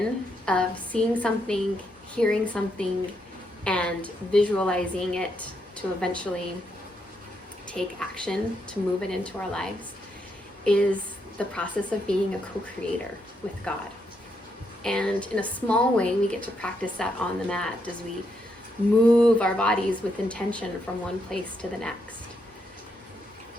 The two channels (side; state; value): both; normal; correlation 0.79